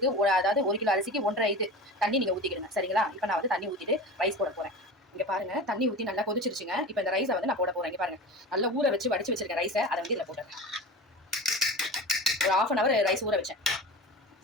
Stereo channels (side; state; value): both; normal; correlation 0.32